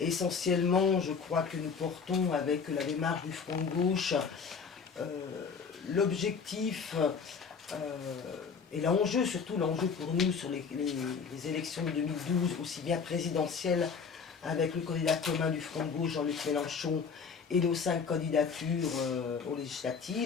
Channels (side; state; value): right; quieter; 5.7 dB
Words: je crois que nous portons avec la démarche du Front de Gauche l'objectif et l'enjeu, surtout l'enjeu pour nous sur les élections de 2012, aussi bien présidentielles avec le candidat commun du Front de Gauche, Jean-Luc Mélenchon, et nos 5 candidatures aux